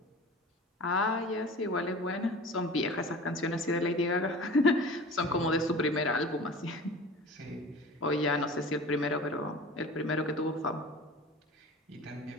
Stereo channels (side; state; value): both; normal; correlation 0.39